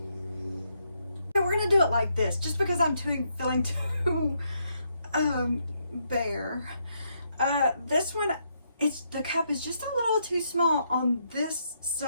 We're gonna do it like this, just because I'm feeling too bare. This one, the cup is just a little too small on this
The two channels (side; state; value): both; inverted; correlation -0.77